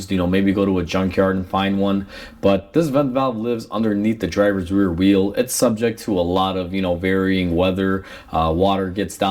maybe go to a junkyard and find one. But this vent valve lives underneath the driver's rear wheel. It's subject to a lot of, varying weather. Water gets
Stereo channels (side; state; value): both; identical; correlation 1.00